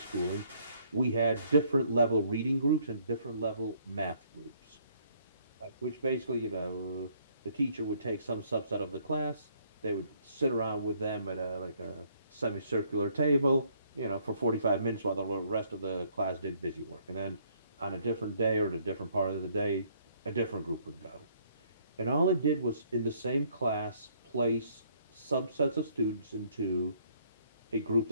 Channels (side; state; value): both; inverted; correlation -0.65